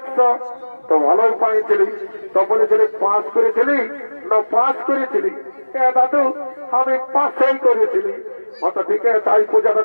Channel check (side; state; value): both; inverted; correlation -1.00